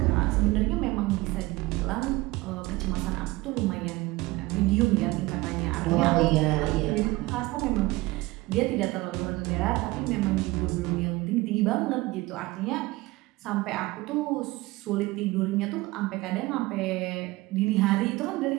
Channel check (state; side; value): quieter; left; 20.8 dB